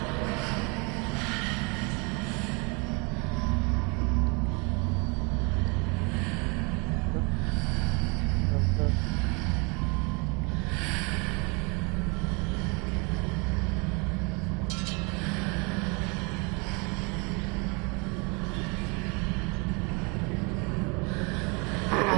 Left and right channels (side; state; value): left; quieter; 30.9 dB